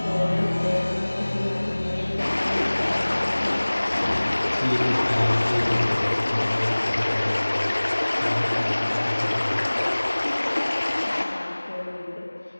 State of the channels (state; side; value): inverted; both; correlation -1.00